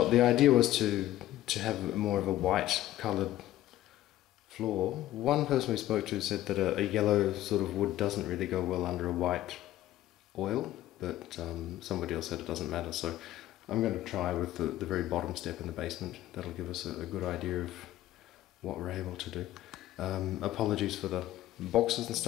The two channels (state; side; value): quieter; right; 14.3 dB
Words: The idea was to have more of a white coloured floor. One person we spoke to said that a yellow sort of wood doesn't really go well under a white oil, but somebody else said it doesn't matter, so I'm going to try with the very bottom step in the basement. That'll give us a good idea of what we're able to do. Apologies for the boxes and